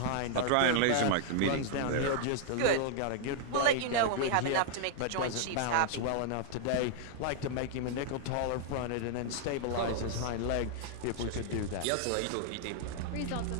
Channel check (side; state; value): both; different; correlation -0.01